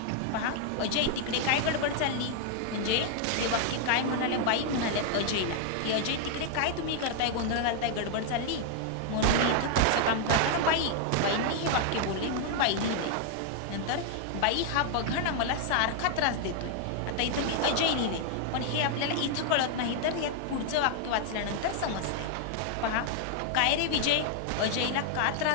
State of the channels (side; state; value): both; different; correlation 0.00